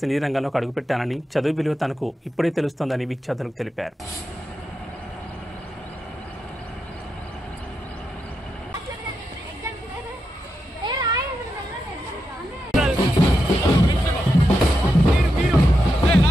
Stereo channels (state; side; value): normal; both; correlation 0.86